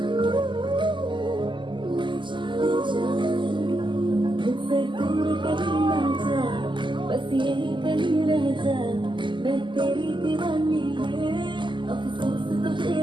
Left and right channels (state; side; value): late; left; 0.24 ms